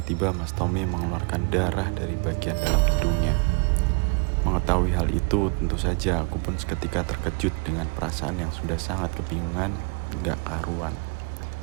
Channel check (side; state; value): left; quieter; 33.6 dB